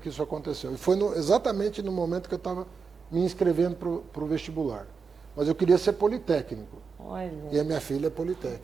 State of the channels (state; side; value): quieter; left; 5.3 dB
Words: isso aconteceu. E foi exatamente no momento que eu estava me inscrevendo para o vestibular. Mas eu queria ser politécnico. Olha, E a minha filha é